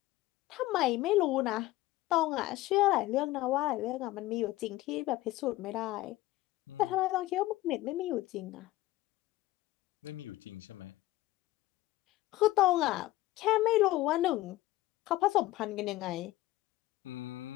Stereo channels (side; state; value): right; quieter; 17.1 dB